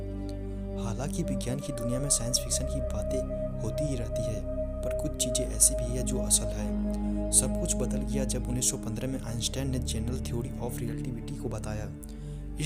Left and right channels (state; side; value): identical; both; correlation 1.00